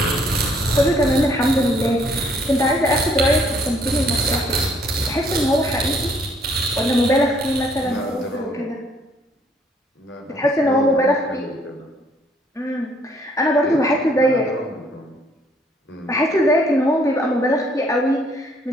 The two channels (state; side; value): normal; both; correlation 0.65